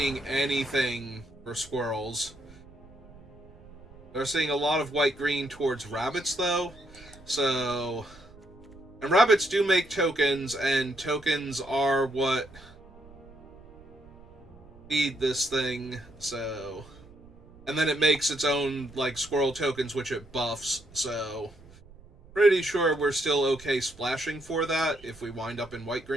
anything for squirrels. We're seeing a lot of white-green towards rabbits, though. So... And rabbits do make tokens, and tokens are what feed this thing, so... And then it makes its own, like, squirrel tokens, which it buffs, so... Pretty sure we're still okay splashing for that if we wind up in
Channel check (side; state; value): right; noise; rumble, 22 dB below the sound